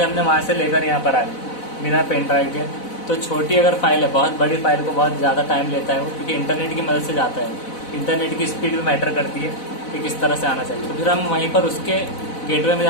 हमने वहाँ से लेकर यहाँ पर आ गई बिना पेन ड्राइव के। तो छोटी अगर फाइल है, बहुत बड़ी फाइल को बहुत ज़्यादा टाइम लेता है वो, क्योंकि इंटरनेट की मदद से जाता है। इंटरनेट की स्पीड भी मैटर करती है कि किस तरह से आना चाहिए। तो फिर हम वहीं पर उसके गेटवे में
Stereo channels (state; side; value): late; right; 4.0 ms